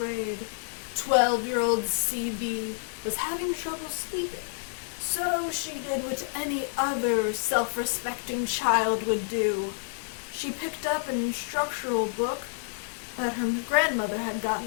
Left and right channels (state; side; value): silent; right; digital silence